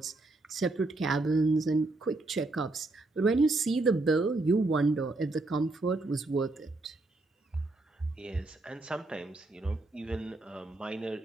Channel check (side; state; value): left; quieter; 3.1 dB